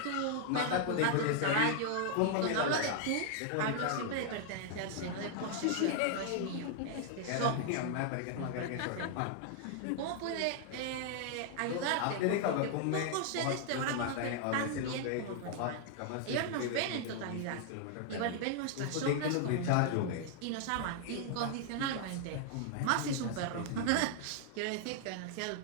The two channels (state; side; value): different; both; correlation 0.00